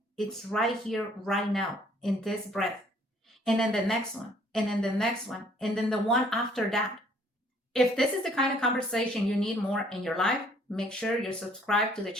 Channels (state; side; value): normal; both; correlation 0.60